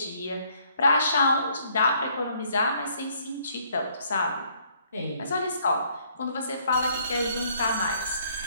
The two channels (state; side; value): inverted; both; correlation -0.65